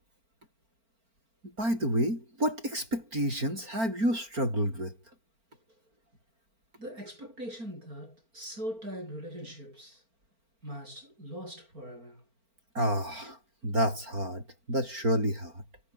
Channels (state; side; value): late; left; 4.4 ms